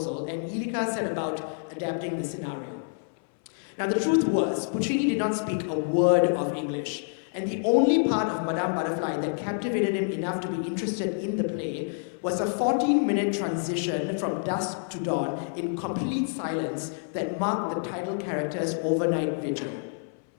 and Lirica set about adapting the scenario. Now the truth was, Puccini did not speak a word of English, and the only part of Madame Butterfly that captivated him enough to be interested in the play was a 14-minute transition from dusk to dawn in complete silence that marked the title character's overnight vigil.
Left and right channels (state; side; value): silent; right; 58 dB below the other